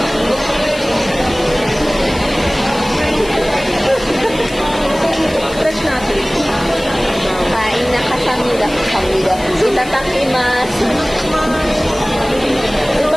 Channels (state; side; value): noise; left; hiss, 17 dB below the sound